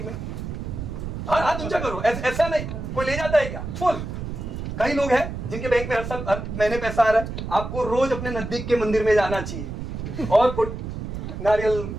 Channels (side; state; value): right; noise; rumble, 6 dB below the sound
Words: में? हाँ हाथ ऊंचा करो। ऐसा नहीं कोई ले जाता है क्या फुल? कई लोग हैं जिनके बैंक में हर साल हर महीने पैसा आ रहा है। आपको रोज अपने नजदीक के मंदिर में जाना चाहिए और नारियल